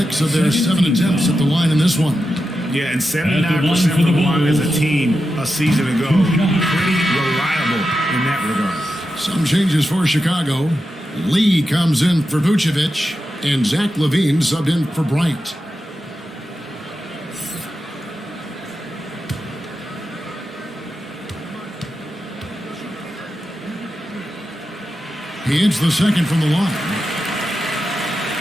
of their 7 attempts at the line in this one. Yeah, and 79% from the line as a team a season ago. Pretty reliable in that regard. Some changes for Chicago. Lee comes in for Vucevic, and Zach LaVine subbed in for Bryant. He hits the second from the line.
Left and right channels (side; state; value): both; normal; correlation 0.89